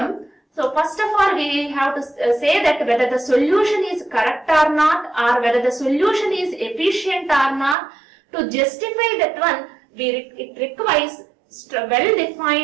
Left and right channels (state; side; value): drops out; left; at 7.8 s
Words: so first of all we have to say that whether the solution is correct or not, or whether the solution is efficient or not. To justify that one, it requires